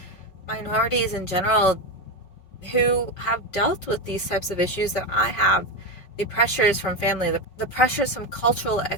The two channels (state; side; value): late; right; 5.4 ms